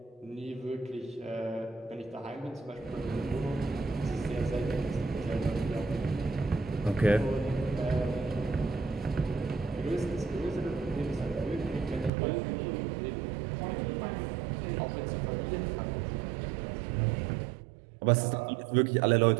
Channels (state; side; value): drops out; left; at 12.1 s